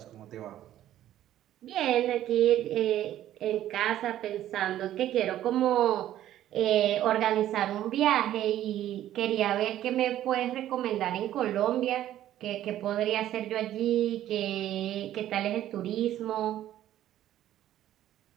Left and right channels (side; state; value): left; quieter; 12.6 dB